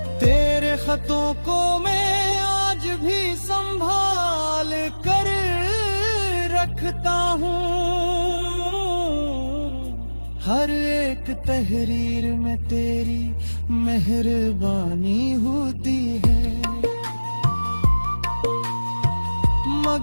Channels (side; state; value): both; inverted; correlation -1.00